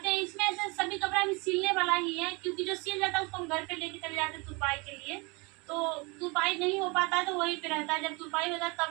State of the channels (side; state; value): left; quieter; 28.1 dB